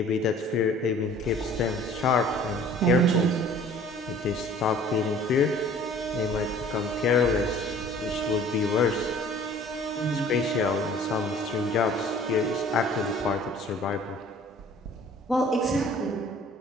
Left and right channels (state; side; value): normal; both; correlation 0.50